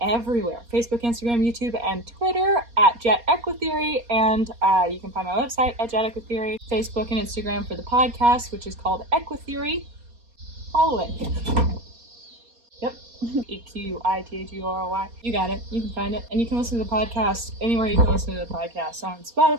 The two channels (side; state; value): left; late; 4.2 ms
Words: everywhere: Facebook, Instagram, YouTube, and Twitter at EQUITHEORY, and you can find my website at EQUITHEORY, Facebook and Instagram for the podcast, which is called EQUITHEORY. Follow it. Yep. EQUITHEORY. You got it. You can find it. And you can listen to the podcast anywhere you can listen to the podcast, on